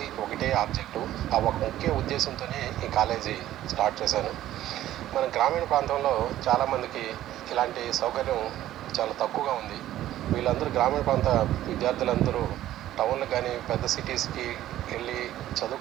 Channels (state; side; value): quieter; left; 13.4 dB